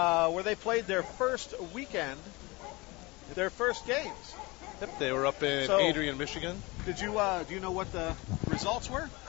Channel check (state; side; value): quieter; right; 24.1 dB